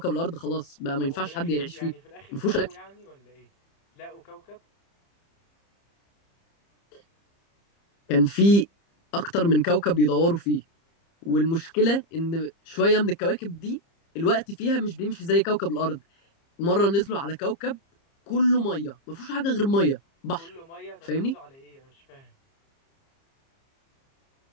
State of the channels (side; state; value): right; late; 30 ms